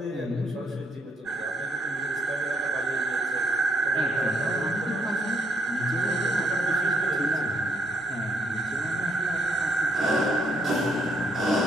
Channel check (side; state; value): both; normal; correlation 0.70